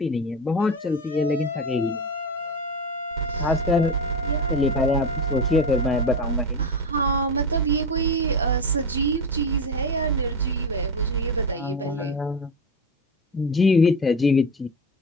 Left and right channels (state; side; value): normal; both; correlation 0.20